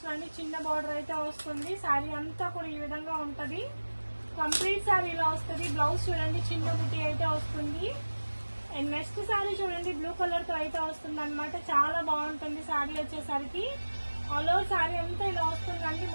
అండి, చిన్న బార్డర్ అయితే వస్తుంది. సారీ అంతా కూడా ఈ విధంగా ఉంటది. కంప్లీట్ సారీ ఇలా వస్తుంది. బ్లౌజ్ చూడండి చిన్న బుట్టి అయితే వస్తుంది. అండ్ నెక్స్ట్ సారీ చూడండి, బ్లూ కలర్ తో అయితే వస్తుంది అనమాట. చాలా బాగుంటుంది సారీ వచ్చేసరికి. ఆల్ ఓవర్ సారీ అంతా ఇలా వస్తుందండి,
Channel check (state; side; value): inverted; both; correlation -1.00